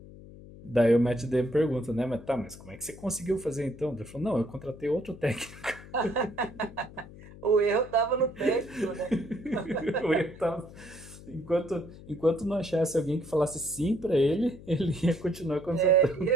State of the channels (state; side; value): noise; left; hum, 17 dB below the sound